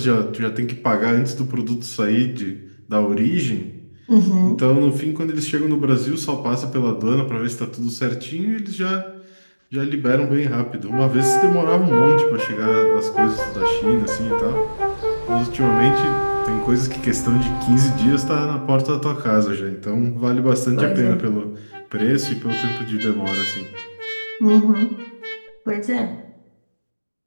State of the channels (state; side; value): inverted; both; correlation -1.00